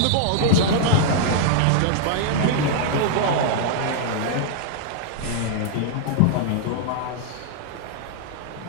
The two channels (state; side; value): different; both; correlation 0.00